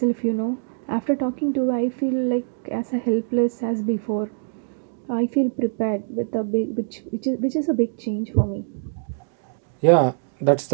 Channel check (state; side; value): silent; left; digital silence